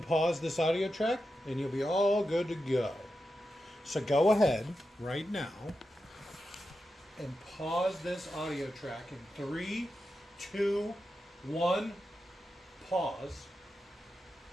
this audio track, and you'll be all good to go. So go ahead right now and pause this audio track in 3, 2, 1, pause.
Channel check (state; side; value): normal; both; correlation 0.89